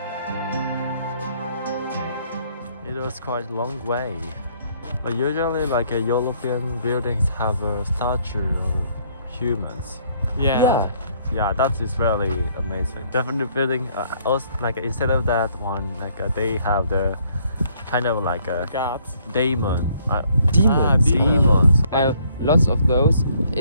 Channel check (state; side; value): inverted; both; correlation -0.65